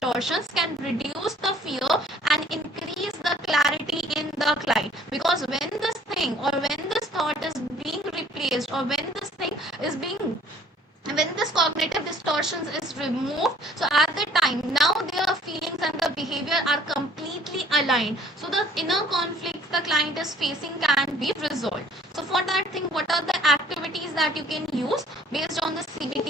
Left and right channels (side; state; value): both; normal; correlation 0.56